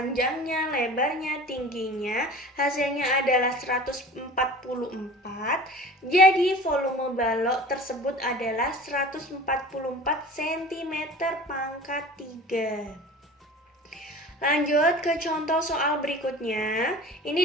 lebarnya, tingginya. Hasilnya adalah 144. Jadi volume balok tersebut adalah 144 cm pangkat 3. Lanjut ke contoh soal berikutnya.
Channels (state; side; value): normal; both; correlation 0.39